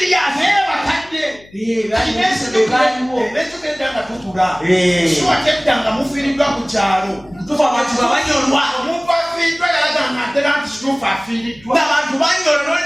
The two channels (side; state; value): left; noise; hum, 25 dB below the sound